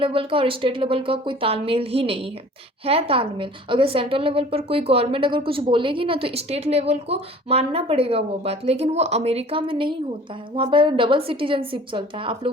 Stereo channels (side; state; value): both; normal; correlation 0.47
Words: का और स्टेट लेवल का कोई तालमेल ही नहीं है तालमेल। अगर सेंट्रल लेवल पर कोई गवर्नमेंट अगर कुछ बोलेगी ना, तो स्टेट लेवल को मानना पड़ेगा वो बात। लेकिन वो अमेरिका में नहीं होता है, वहाँ पर डबल सिटीजनशिप चलता है। आप